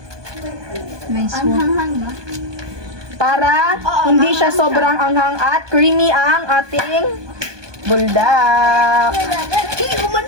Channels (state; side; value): late; left; 1.2 ms